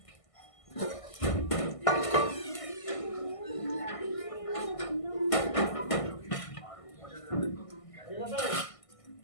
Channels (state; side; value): late; right; 1.6 ms